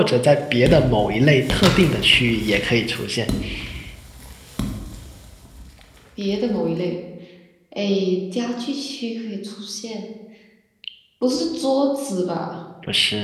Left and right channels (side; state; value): both; identical; correlation 1.00